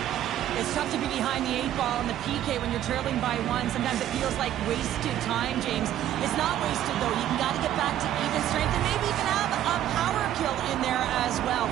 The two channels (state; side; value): quieter; left; 11.9 dB